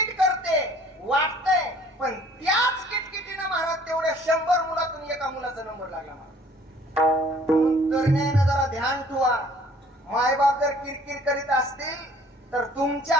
करते, वाटतंय, पण त्याच किटकिटीनं महाराज तेवढ्या 100 मुलातून एका मुलाचा नंबर लागला. म्हणून तरुणाईनं जरा ध्यान ठेवा. मायबाप जर किरकिर करीत असतील तर तुमच्या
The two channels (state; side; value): normal; both; correlation 0.55